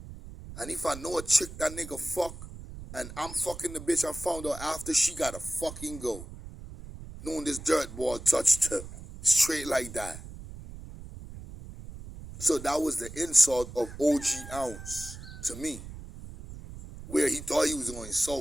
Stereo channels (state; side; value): noise; right; rumble, 13 dB below the sound